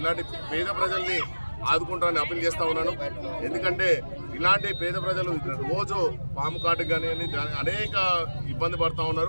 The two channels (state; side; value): inverted; both; correlation -1.00